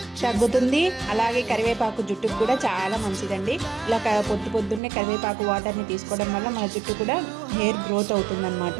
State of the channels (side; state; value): left; drops out; at 4.8 s